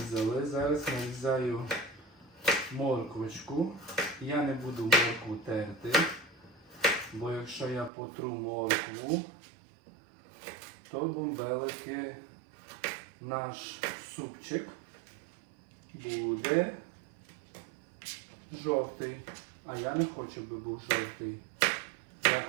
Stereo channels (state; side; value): drops out; left; at 7.9 s